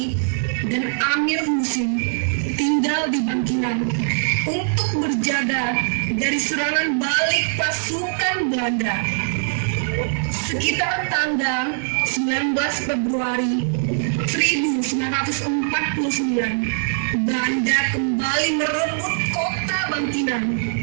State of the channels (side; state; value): left; silent; digital silence